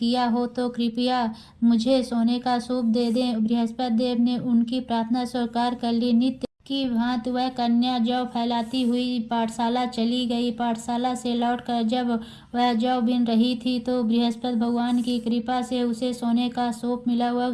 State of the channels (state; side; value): identical; both; correlation 1.00